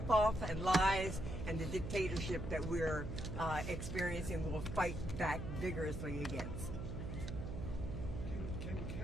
and lies and the dictatorship that we're experiencing. We'll fight back vigorously against. Can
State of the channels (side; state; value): right; noise; hum, 5 dB below the sound